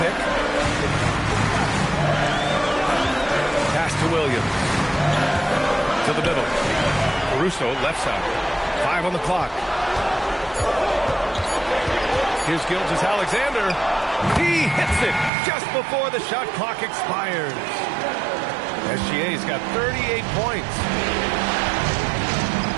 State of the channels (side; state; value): left; drops out; at 15.3 s